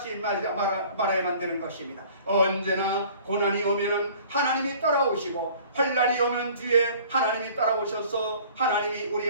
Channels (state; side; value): inverted; both; correlation -0.50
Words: 말아야만 되는 것입니다. 언제나 고난이 오면은 하나님이 따라오시고 환난이 오면 뒤에 하나님이 따라오셔서 하나님이 우리